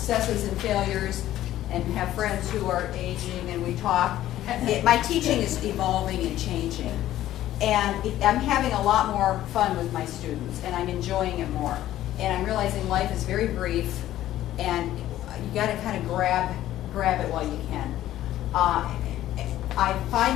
and failures, and have friends who are aging, and we talk, my teaching is evolving and changing. And I'm having a lot more fun with my students, and I'm enjoying it more. And I'm realizing life is very brief, and you got to kind of grab it while you can. I'm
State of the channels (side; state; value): right; quieter; 13.5 dB